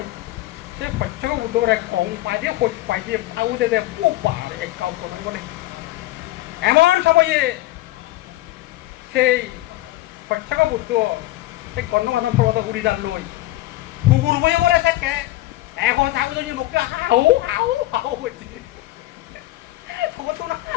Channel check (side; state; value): right; quieter; 16.8 dB